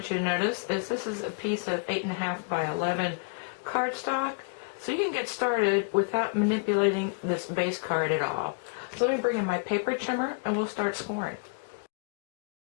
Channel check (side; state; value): right; quieter; 38.8 dB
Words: you to notice is this is a piece of 8.5 by 11 cardstock. So you can get started without manipulating this base card at all. So let me bring in my paper trimmer and we'll start scoring.